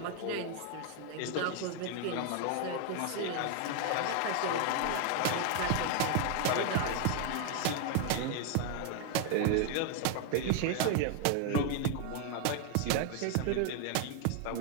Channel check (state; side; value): different; both; correlation 0.00